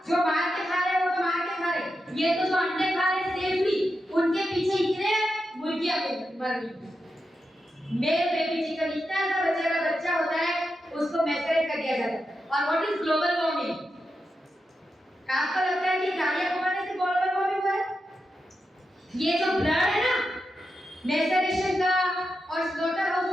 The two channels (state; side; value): normal; both; correlation 0.88